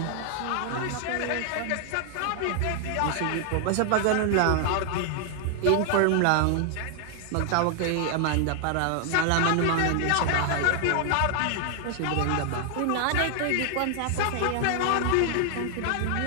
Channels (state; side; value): different; both; correlation 0.00